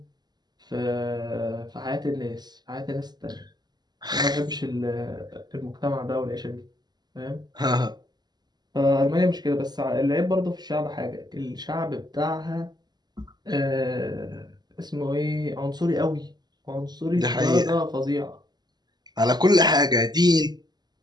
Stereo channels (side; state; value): left; late; 0.20 ms